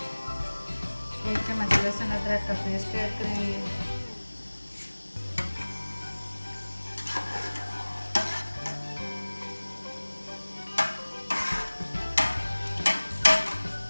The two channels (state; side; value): inverted; both; correlation -1.00